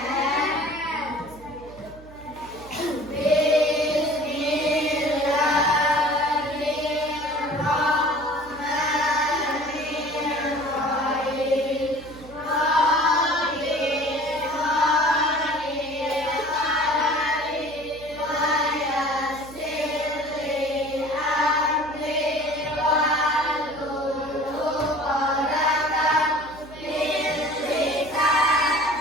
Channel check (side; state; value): right; noise; hum, 19 dB below the sound